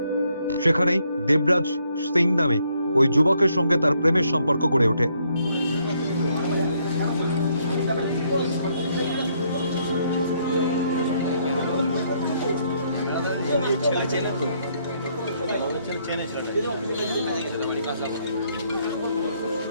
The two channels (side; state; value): both; inverted; correlation -0.72